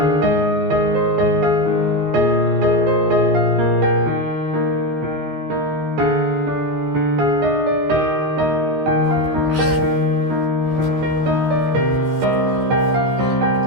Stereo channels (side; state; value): left; late; 14 ms